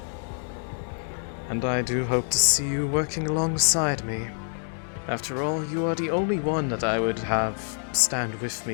And I do hope to see you working alongside me. After all, you are the only one that I would have stand with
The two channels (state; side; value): silent; right; 60 dB below the other